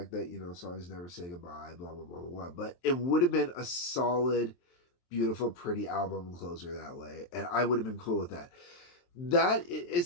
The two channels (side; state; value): right; late; 23 ms